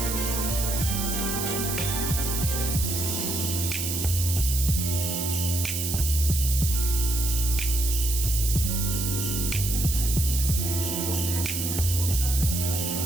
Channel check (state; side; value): noise; right; hiss, 2 dB below the sound